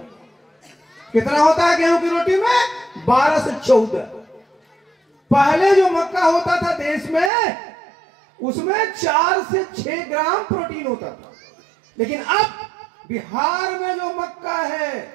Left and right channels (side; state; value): left; drops out; at 7.3 s